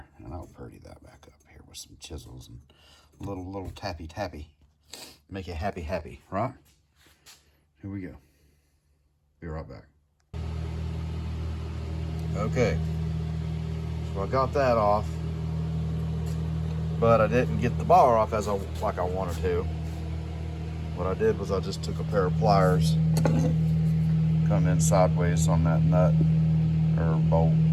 and I'll purdy that back up here with some chisels and little tappy. Make it happy, right? Here we go. Be right back. Okay, so I got that off, but I didn't get the bar off like I wanted to. What I did was I just took a pair of pliers, come in sideways on that nut or bolt,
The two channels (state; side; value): identical; both; correlation 1.00